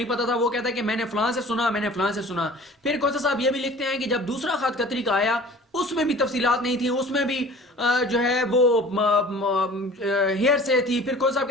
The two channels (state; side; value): normal; both; correlation 0.45